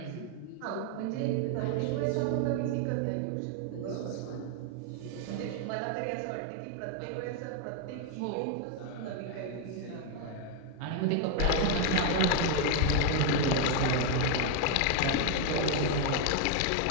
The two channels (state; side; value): different; both; correlation 0.01